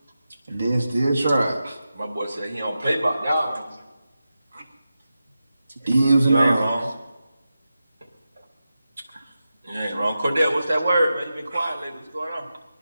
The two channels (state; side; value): inverted; both; correlation -0.91